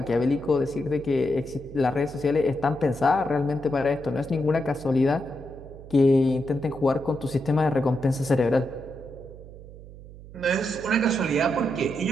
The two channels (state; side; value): noise; right; hum, 17 dB below the sound